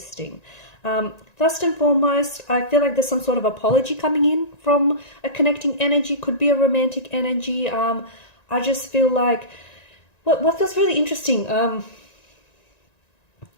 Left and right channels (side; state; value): right; late; 1.9 ms